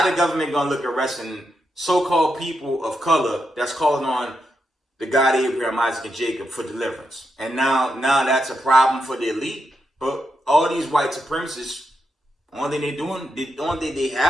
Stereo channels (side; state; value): both; normal; correlation 0.84